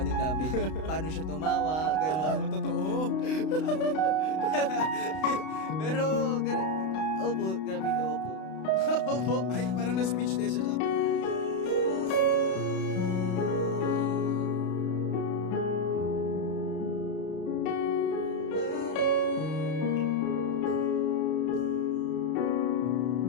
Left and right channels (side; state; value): right; late; 32 ms